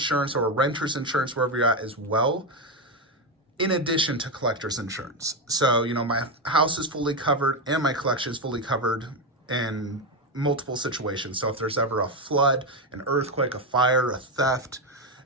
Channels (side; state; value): both; normal; correlation 0.10